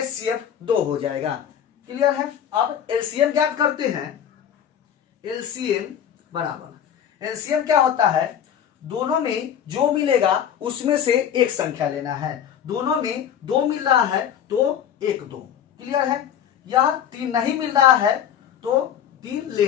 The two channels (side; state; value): right; quieter; 9.3 dB